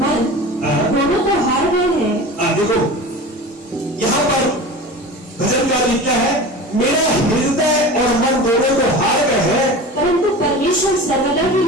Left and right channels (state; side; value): normal; both; correlation 0.34